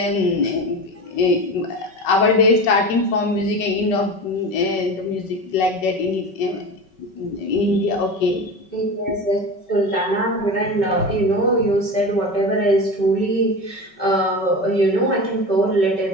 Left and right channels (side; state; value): right; late; 5.3 ms